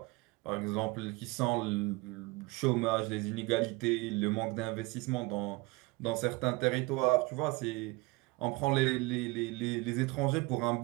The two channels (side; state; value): left; quieter; 23.6 dB